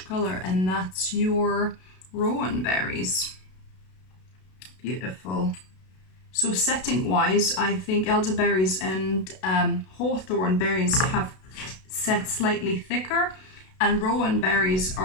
color, and that's your rowan berries. Beautiful. So setting wise, I think elderberries and hawthorn berries have set slightly thicker, and rowan berries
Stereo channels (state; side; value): late; right; 32 ms